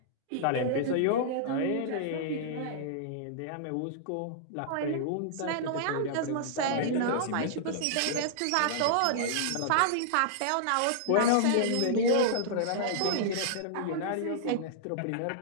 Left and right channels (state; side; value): different; both; correlation -0.01